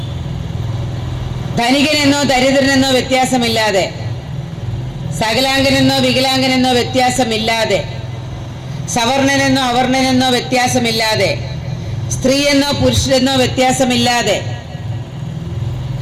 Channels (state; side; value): identical; both; correlation 1.00